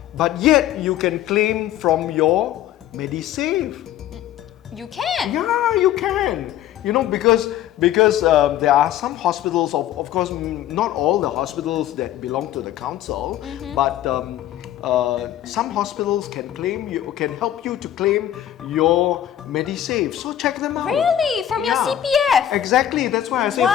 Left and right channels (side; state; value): right; quieter; 11.8 dB